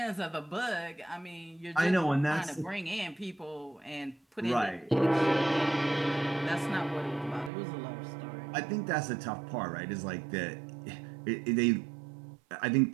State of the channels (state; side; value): drops out; left; at 7.5 s